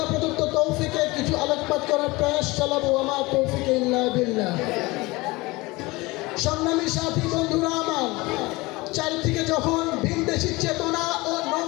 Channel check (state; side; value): quieter; right; 22.4 dB